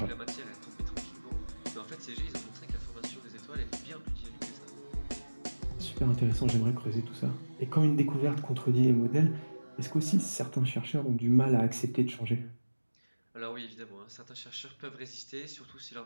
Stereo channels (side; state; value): both; inverted; correlation -1.00